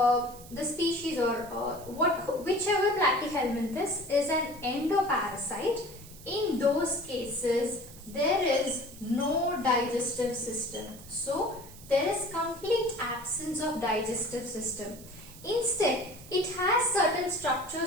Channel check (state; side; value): noise; right; hiss, 19 dB below the sound